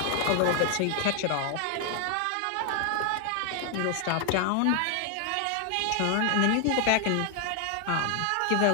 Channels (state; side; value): different; both; correlation 0.00